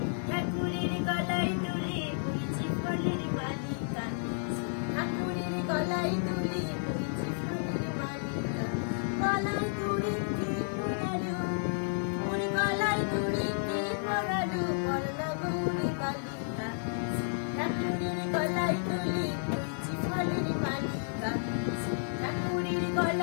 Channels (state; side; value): silent; right; digital silence